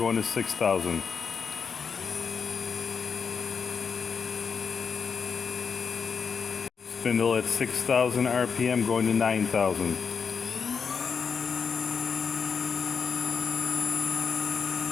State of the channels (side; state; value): right; quieter; 6.0 dB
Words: to 6,000. Spindle at 6,000 RPM going to 9,000.